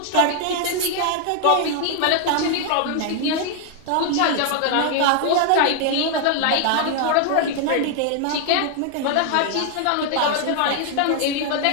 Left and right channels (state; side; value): different; both; correlation 0.00